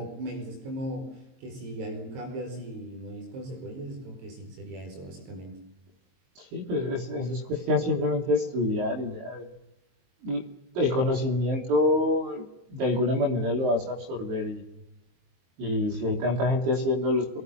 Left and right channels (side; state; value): left; late; 22 ms